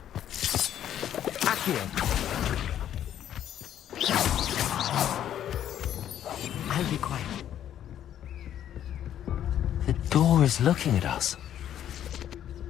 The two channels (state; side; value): quieter; right; 10.7 dB